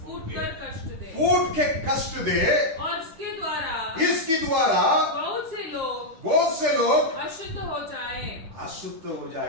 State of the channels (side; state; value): left; late; 9.3 ms